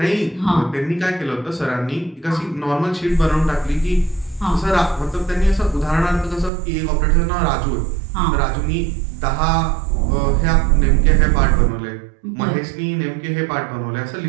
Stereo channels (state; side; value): drops out; left; at 6.5 s